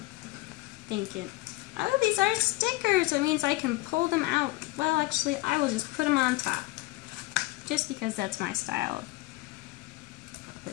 Thinking. Oh, these are stickers! That means I can pull them out. Well, actually, I will just put them on top. Just because that's my style.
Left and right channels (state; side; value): quieter; right; 20.6 dB